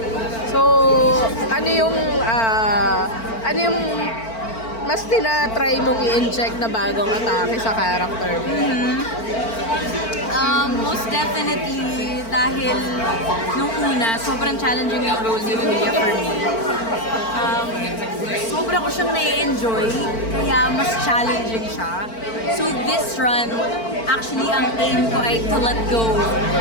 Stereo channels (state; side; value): late; right; 4.4 ms